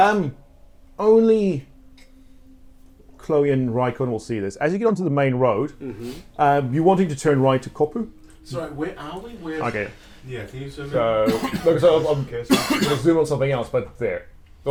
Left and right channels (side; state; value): both; identical; correlation 1.00